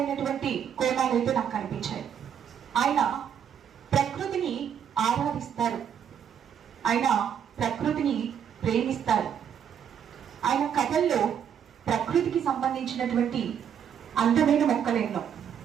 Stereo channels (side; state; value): left; quieter; 8.5 dB